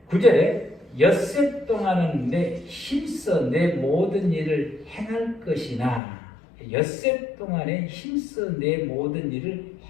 9절에 엿새 동안은 내 힘써 내 모든 일을 행할 것이나 엿새 동안에 힘써 내 모든 일을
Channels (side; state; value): right; drops out; at 6.0 s